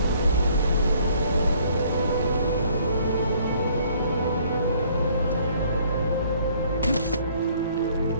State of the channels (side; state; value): both; inverted; correlation -0.61